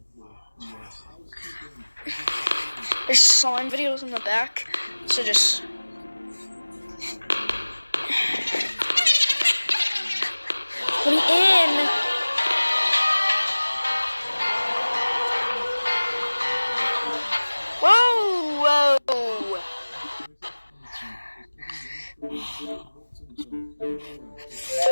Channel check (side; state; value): both; inverted; correlation -1.00